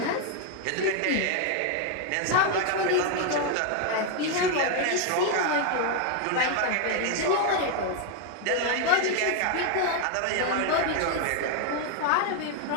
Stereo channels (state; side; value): different; both; correlation 0.01